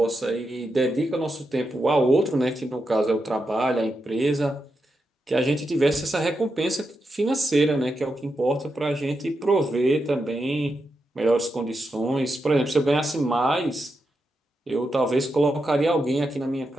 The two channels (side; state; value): both; normal; correlation 0.86